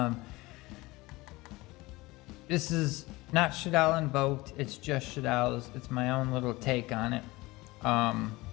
this is not Shaddolls invoked, it's just Shaddolls. It's my own little take on it.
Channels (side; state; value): right; quieter; 21.1 dB